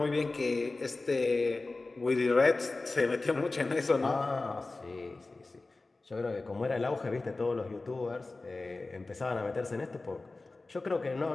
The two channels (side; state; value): right; quieter; 3.4 dB